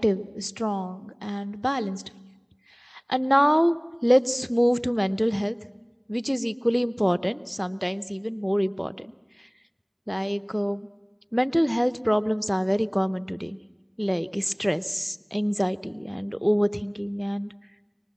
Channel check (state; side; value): identical; both; correlation 1.00